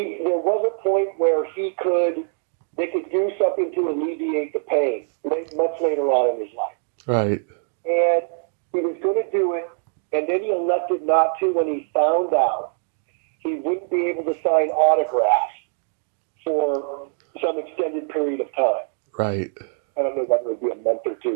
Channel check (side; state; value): left; silent; 63 dB below the other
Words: was a point where they could do something to alleviate the pain much later on in his life. Right. And he was going to do it, and then he elected not to when he found out he wouldn't be able to sign autographs for some extended period of time. Right. I don't know whether it would be a month or